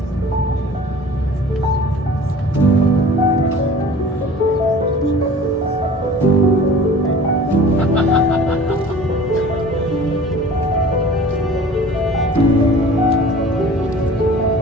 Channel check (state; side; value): normal; both; correlation 0.44